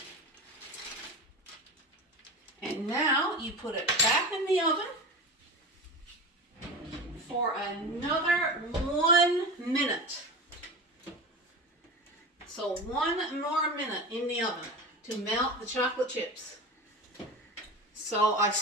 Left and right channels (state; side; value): normal; both; correlation 0.28